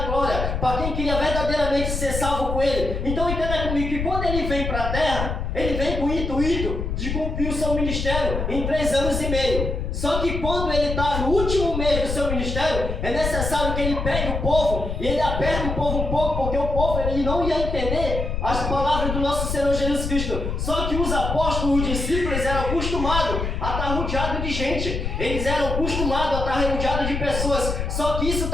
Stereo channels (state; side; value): noise; left; rumble, 3 dB below the sound